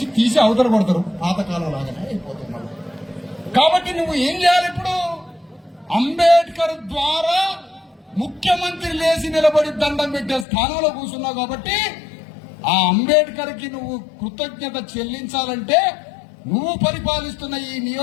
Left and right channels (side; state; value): right; drops out; at 10.5 s